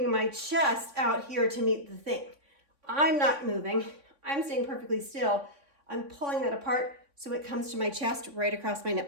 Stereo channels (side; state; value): left; late; 3.6 ms